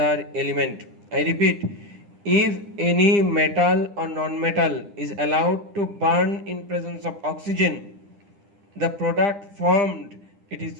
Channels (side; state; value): left; late; 9.9 ms